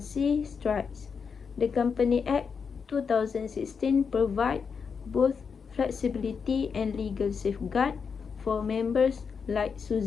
strikes. The Company Act 2016 provides both flexibility and legal safeguard for members like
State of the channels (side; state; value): right; quieter; 6.0 dB